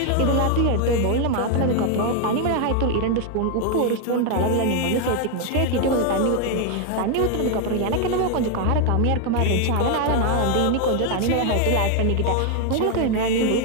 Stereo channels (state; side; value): different; both; correlation 0.01